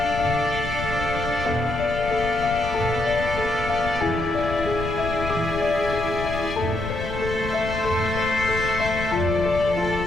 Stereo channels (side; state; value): left; noise; rumble, 7 dB below the sound